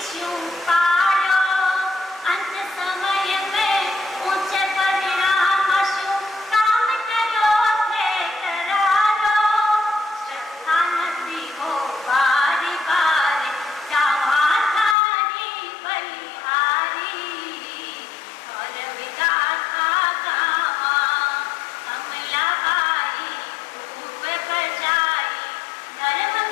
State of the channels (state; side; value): drops out; right; at 15.0 s